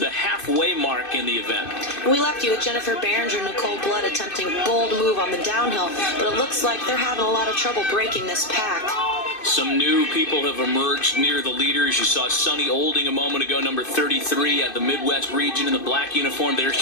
halfway mark in the event. We left you with Jennifer Behringer and Nicole Blood attempting bold move on the downhill, but it looks like they're having a lot of trouble breaking this pack. Some new people have emerged near the leaders. You saw Sunny Olding a moment ago, number 33 at the Midwest region in the black uniform. There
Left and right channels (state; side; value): late; right; 2.6 ms